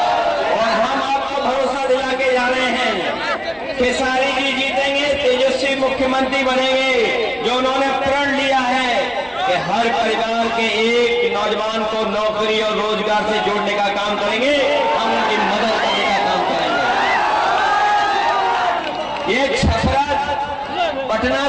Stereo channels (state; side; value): identical; both; correlation 1.00